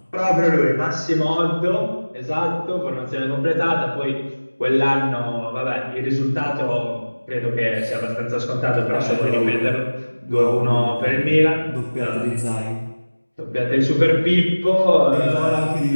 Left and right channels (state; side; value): inverted; both; correlation -1.00